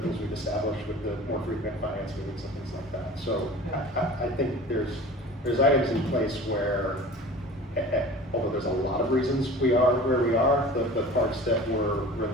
we've established with the more frequent finance meetings and things like that. So I think there's items in place where, although there's a lot of reasons we are where we are, the parts that were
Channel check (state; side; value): normal; both; correlation 0.41